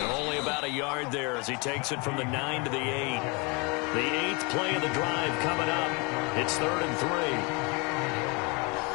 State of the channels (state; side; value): quieter; right; 30.4 dB